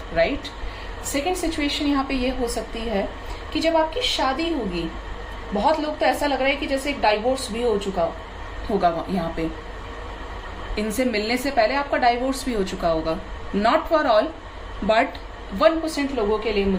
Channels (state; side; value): identical; both; correlation 1.00